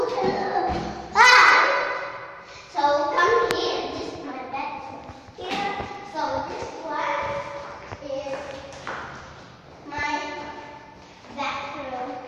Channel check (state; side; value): identical; both; correlation 1.00